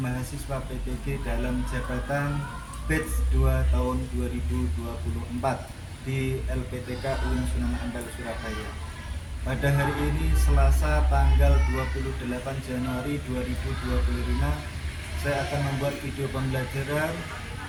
mahasiswa PPG dalam jabatan batch 2 tahun 2024 di LPTK UIN Sunan Ampel Surabaya. Pada hari ini Selasa tanggal 28 Januari 2025, saya akan membuat video pembelajaran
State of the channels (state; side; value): identical; both; correlation 1.00